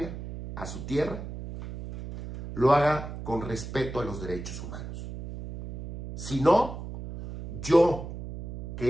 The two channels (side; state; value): right; noise; hum, 9 dB below the sound